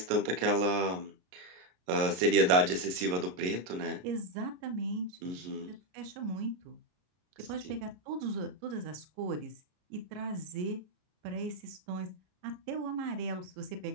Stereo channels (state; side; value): late; left; 33 ms